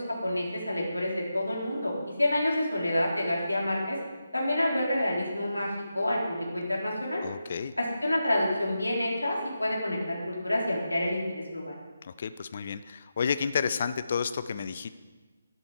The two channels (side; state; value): both; inverted; correlation -0.88